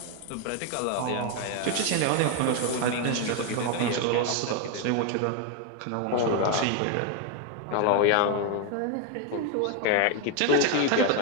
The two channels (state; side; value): different; both; correlation 0.01